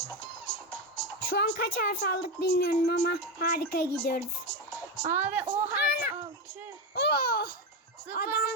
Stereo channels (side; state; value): both; normal; correlation 0.13